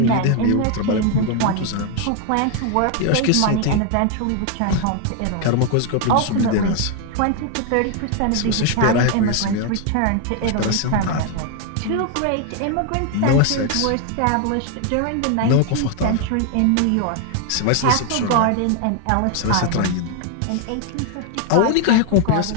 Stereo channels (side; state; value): both; different; correlation 0.01